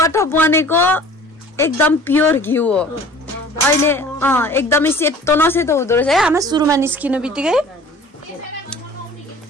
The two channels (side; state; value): both; normal; correlation 0.46